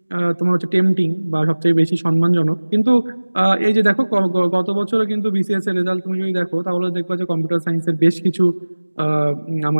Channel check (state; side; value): inverted; both; correlation -1.00